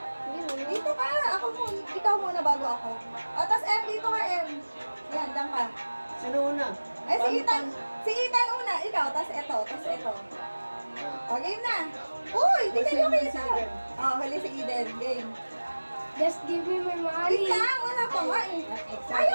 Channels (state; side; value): inverted; both; correlation -1.00